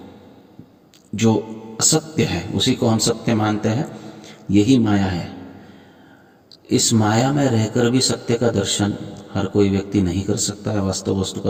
जो असत्य है उसी को हम सत्य मानते हैं, यही माया है। इस माया में रहकर भी सत्य का दर्शन हर कोई व्यक्ति नहीं कर सकता है, वास्तव वस्तु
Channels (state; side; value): identical; both; correlation 1.00